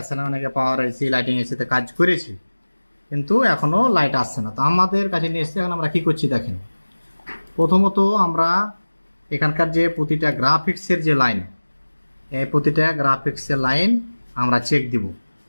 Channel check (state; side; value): inverted; both; correlation -1.00